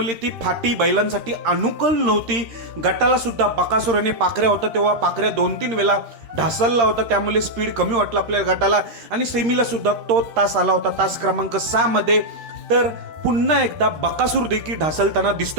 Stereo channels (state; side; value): late; left; 13 ms